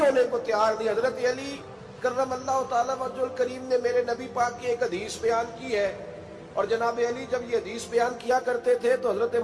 ہونے کو تیار نہیں۔ حضرت علی کرم اللہ تعالیٰ وجہ الکریم نے میرے نبی پاک کی ایک حدیث بیان کی ہے، اور جناب علی جب یہ حدیث بیان کیا کرتے تھے تو حضرت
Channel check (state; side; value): identical; both; correlation 1.00